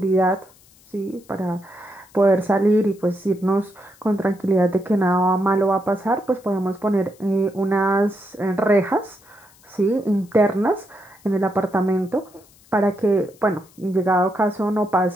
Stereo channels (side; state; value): left; noise; hiss, 28 dB below the sound